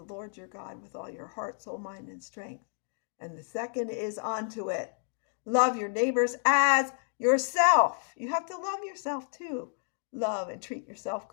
Lord your God with all your heart, soul, mind, and strength. And the second is onto it. Love your neighbors as yourself. You have to love yourself too. Love and treat yourself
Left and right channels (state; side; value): silent; right; digital silence